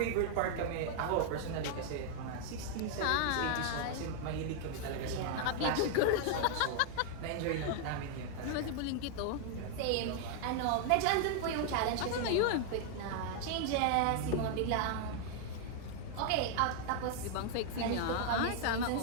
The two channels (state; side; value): different; both; correlation 0.00